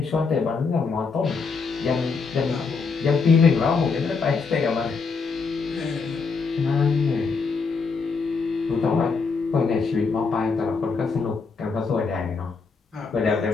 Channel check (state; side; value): quieter; right; 4.8 dB